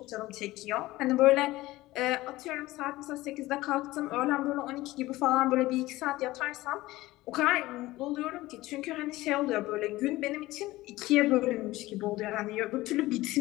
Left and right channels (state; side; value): quieter; right; 18.1 dB